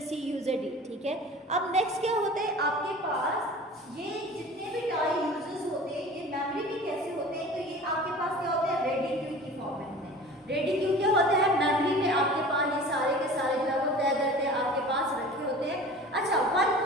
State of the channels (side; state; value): both; normal; correlation 0.41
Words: C, user D, ठीक है। अब नेक्स्ट क्या होता है, आपके पास ये जितने भी टाइम यूजर्स होते हैं ये मेमोरी में कैसे होते हैं, तो ये आपके पास क्या होता है, रेडी क्यू की फॉर्मेट में। रेडी क्यू क्या होता है, मेमोरी में आपके पास ये सारे के सारे जो है वो तय करते हैं आपके पास रखे होते हैं। अच्छा, one